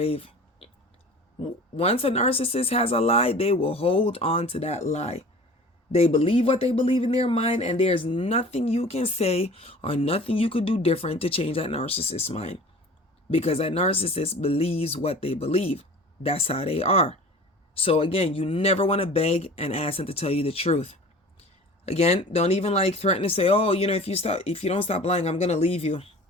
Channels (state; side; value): normal; both; correlation 0.42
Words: Once a narcissist has a lie, they will hold on to that lie. They believe what they believe in their mind, and there's nothing you can say or nothing you could do different to change that narcissist's mind. Because that narcissist believes what they believe. That's how they are. So again, you never want to beg and ask them to tell you the truth. Again, don't even like threaten to say, oh, if you don't stop lying, I'm going to leave you.